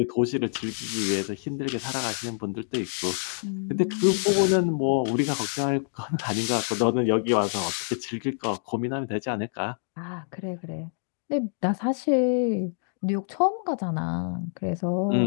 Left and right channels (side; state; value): right; silent; digital silence